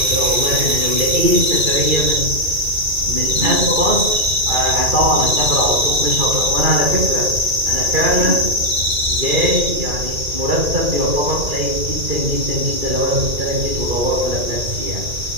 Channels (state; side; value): late; left; 2.4 ms